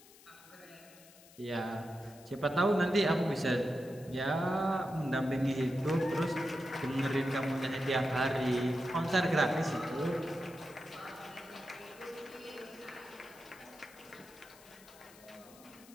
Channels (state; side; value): noise; left; hiss, 22 dB below the sound